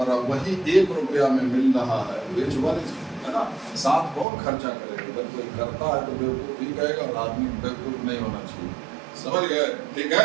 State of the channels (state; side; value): drops out; left; at 4.2 s